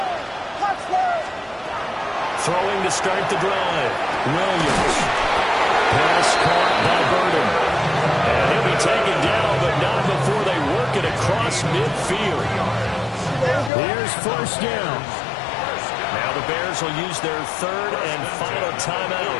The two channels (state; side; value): drops out; right; at 13.7 s